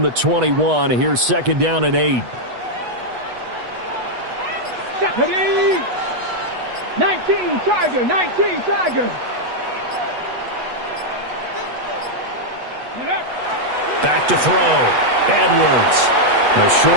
the 21, here's 2nd down and 8. 19 Tiger, 19 Tiger. Back to throw. Edwards. The short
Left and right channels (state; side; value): late; left; 8.2 ms